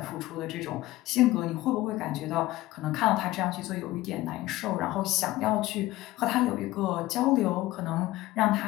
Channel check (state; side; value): quieter; right; 17.2 dB